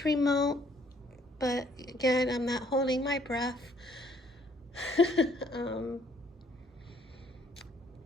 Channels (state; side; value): normal; both; correlation 0.64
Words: remote. But again, I'm not holding my breath.